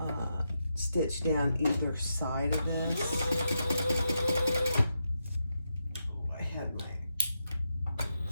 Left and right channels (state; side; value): inverted; both; correlation -0.85